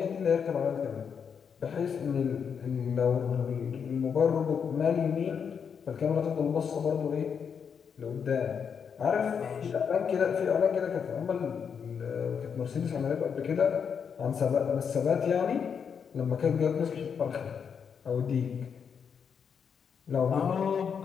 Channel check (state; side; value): quieter; right; 6.9 dB